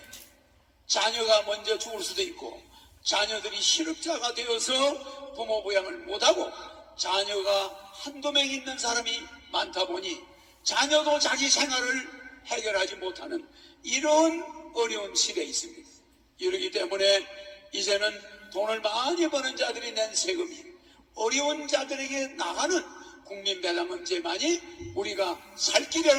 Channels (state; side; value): identical; both; correlation 1.00